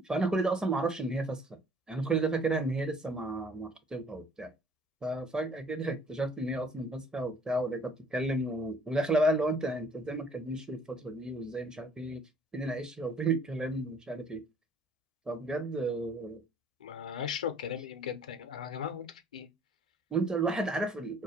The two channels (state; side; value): normal; both; correlation 0.57